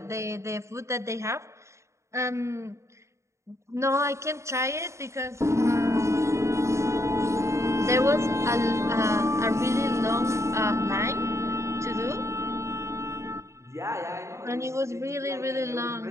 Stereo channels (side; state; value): left; late; 0.14 ms